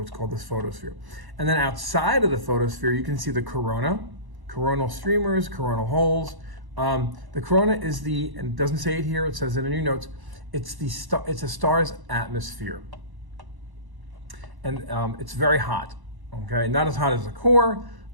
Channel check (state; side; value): late; left; 1.1 ms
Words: it's called this photosphere. And then outside of the photosphere, you can see the corona, coronal streamers, coronal holes. The corona is and it doesn't say it here, it says it in your notes, it's a star's atmosphere. And it's very hot, okay? Not as hot as the core,